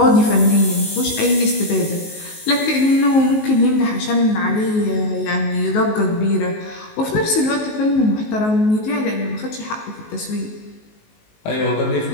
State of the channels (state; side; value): late; right; 19 ms